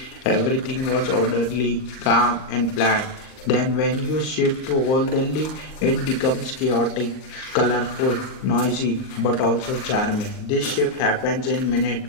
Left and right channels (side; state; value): right; late; 38 ms